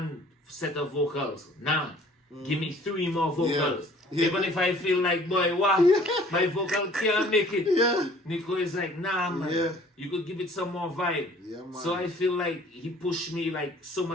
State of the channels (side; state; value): both; normal; correlation 0.54